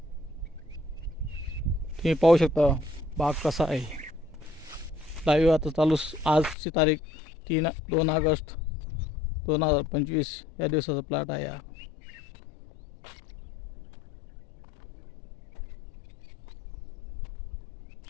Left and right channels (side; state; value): right; drops out; at 6.6 s